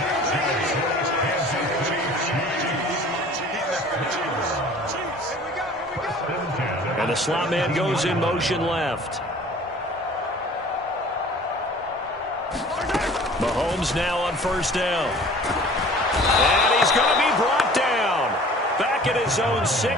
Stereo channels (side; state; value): both; normal; correlation 0.48